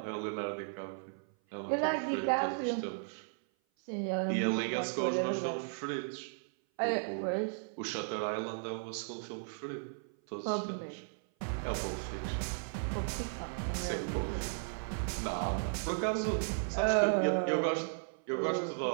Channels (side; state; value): left; silent; 54 dB below the other